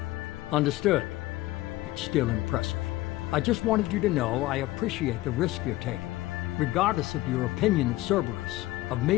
Understood. It's still impressive. I just wanted you to know I appreciate the risk you're taking. Regardless of your opinion of Cerberus, of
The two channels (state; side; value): quieter; right; 17.6 dB